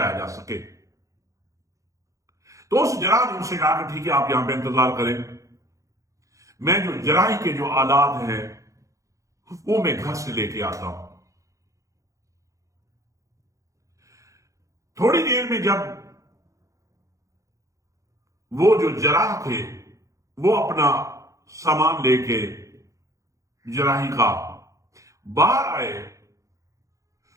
جا سکے۔ تو اس جراح نے ان سے کہا کہ ٹھیک ہے، آپ یہاں پہ انتظار کریں، میں جو جراحی کے جو آلات ہیں وہ میں گھر سے لے کے آتا ہوں۔ تھوڑی دیر میں جب وہ جو جراح تھے وہ اپنا سامان لے کے جراحی کا باہر آئے،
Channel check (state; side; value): late; left; 0.15 ms